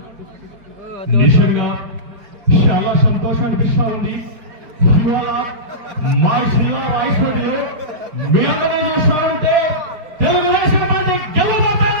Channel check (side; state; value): left; late; 4.8 ms